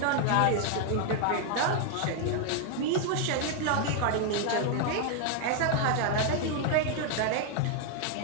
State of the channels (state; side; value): different; both; correlation 0.00